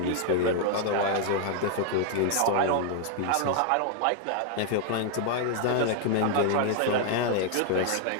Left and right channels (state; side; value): different; both; correlation 0.00